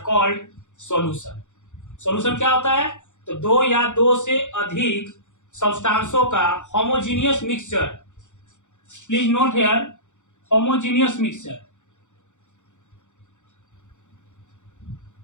called solution. Solution क्या होता है? तो दो या दो से अधिक सब्सटेंसों का homogeneous mixture. Please note here, homogeneous mixture.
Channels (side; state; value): right; late; 0.85 ms